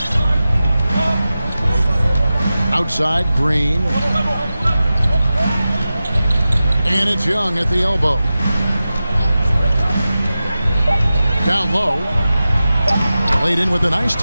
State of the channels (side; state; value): both; inverted; correlation -0.94